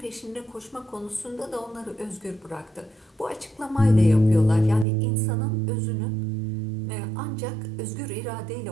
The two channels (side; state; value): left; drops out; at 4.9 s